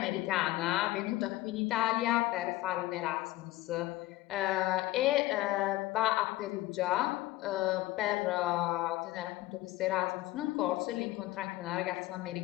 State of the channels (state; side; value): quieter; right; 17.4 dB